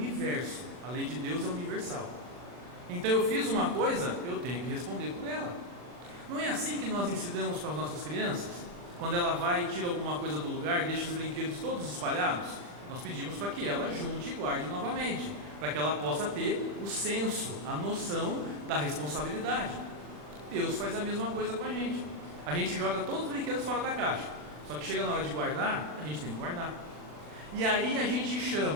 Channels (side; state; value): left; late; 40 ms